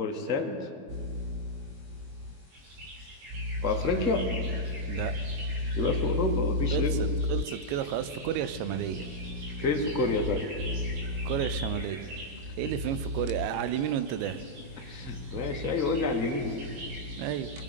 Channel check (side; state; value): left; late; 22 ms